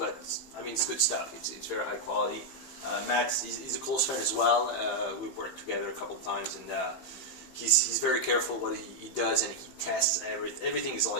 I mean, it's good stuff. It's very high quality. Matt's he's a close friend as well. We've worked together a couple of times, and he's very careful what he does, and he tests everything is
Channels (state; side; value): late; right; 15 ms